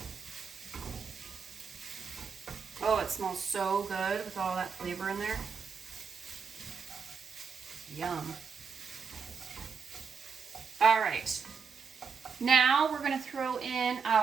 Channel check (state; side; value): quieter; left; 6.0 dB